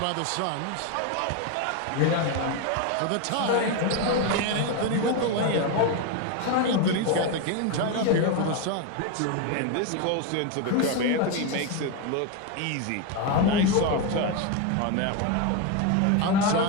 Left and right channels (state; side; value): different; both; correlation 0.02